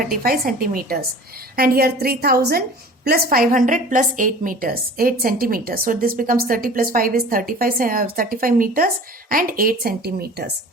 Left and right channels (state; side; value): normal; both; correlation 0.42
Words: centimeters. And here 3000 plus 500 plus 8 meters, 8 centimeters. So this becomes 30 plus 5 is 35 meters and 8 centimeters.